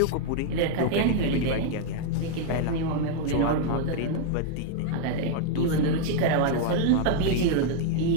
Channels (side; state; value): both; different; correlation 0.00